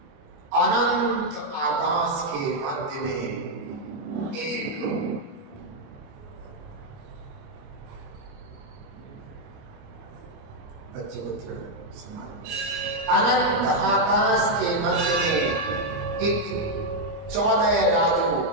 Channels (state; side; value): late; left; 29 ms